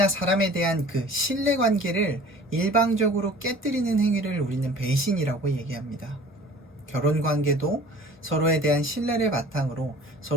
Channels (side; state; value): both; normal; correlation 0.46